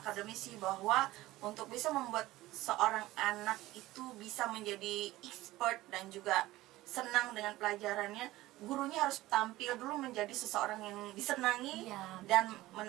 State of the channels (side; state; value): left; quieter; 17.3 dB